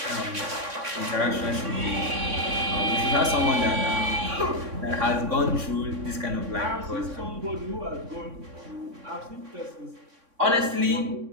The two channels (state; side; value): late; left; 3.6 ms